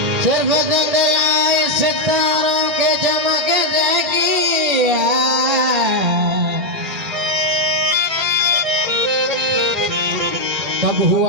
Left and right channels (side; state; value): left; late; 2.4 ms